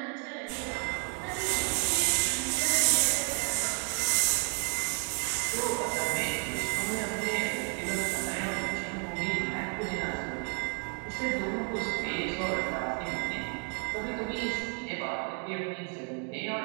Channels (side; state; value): left; quieter; 33.8 dB